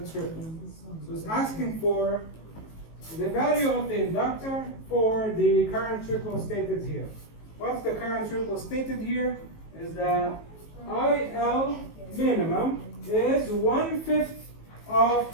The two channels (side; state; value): right; late; 19 ms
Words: triple. So it's asking for the value of the inductor for the current triple stated here. What's the current triple stated here? Is that IL minimum is 1/5 of